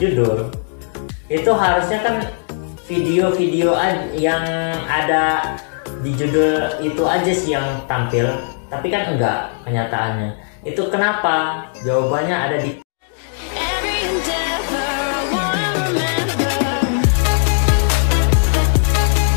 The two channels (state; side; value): silent; right; digital silence